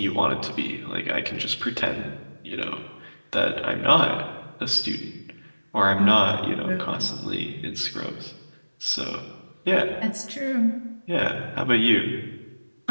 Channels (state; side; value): inverted; both; correlation -1.00